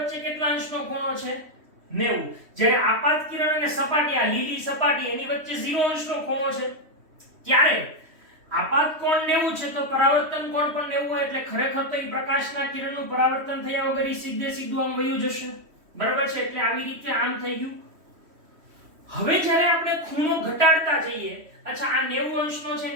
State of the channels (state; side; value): late; left; 3.1 ms